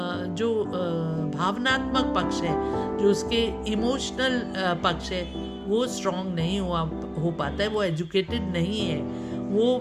भावनात्मक पक्ष है, जो उसके इमोशनल पक्ष है, वो स्ट्रॉन्ग नहीं हो पाता है, वो एजुकेटेड नहीं है, वो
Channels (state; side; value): identical; both; correlation 1.00